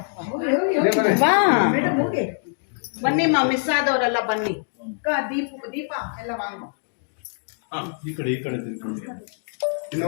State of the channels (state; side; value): silent; right; digital silence